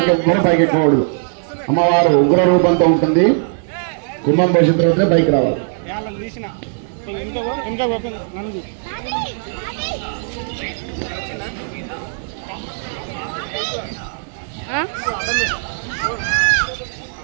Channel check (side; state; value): left; silent; 59 dB below the other